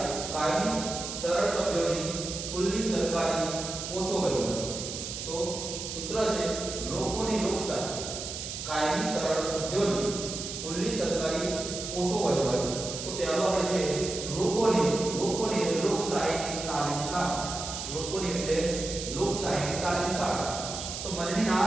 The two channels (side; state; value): right; noise; hiss, 6 dB below the sound